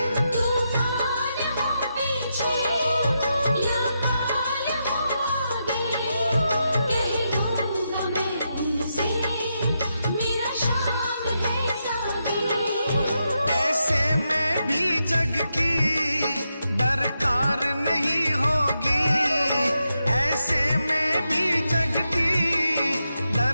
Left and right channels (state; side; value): inverted; both; correlation -0.85